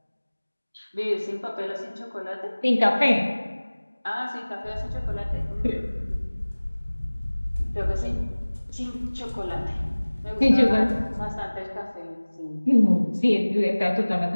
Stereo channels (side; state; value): both; inverted; correlation -1.00